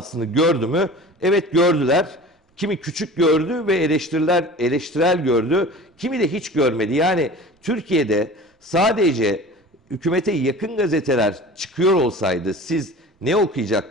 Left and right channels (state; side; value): normal; both; correlation 0.39